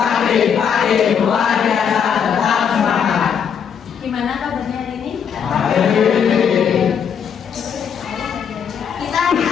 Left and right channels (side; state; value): right; quieter; 7.5 dB